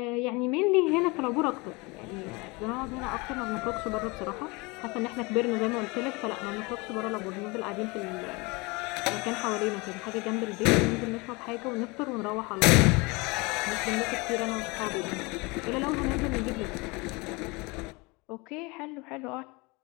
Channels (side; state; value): right; quieter; 26.3 dB